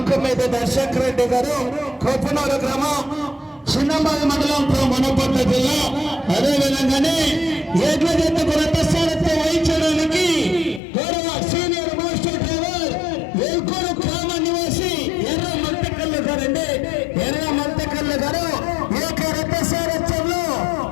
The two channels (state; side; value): drops out; right; at 10.8 s